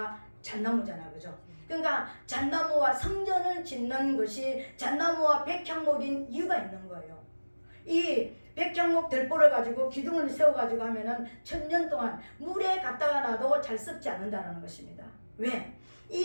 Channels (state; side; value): inverted; both; correlation -1.00